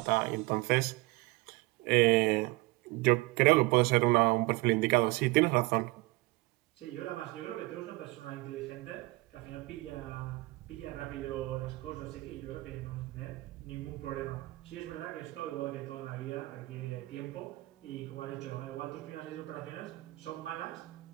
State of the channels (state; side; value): quieter; left; 22.6 dB